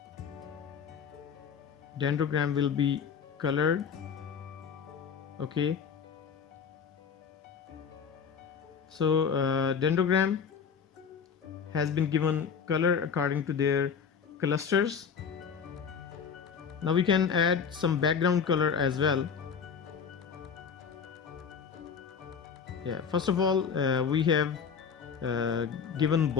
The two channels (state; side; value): quieter; right; 6.5 dB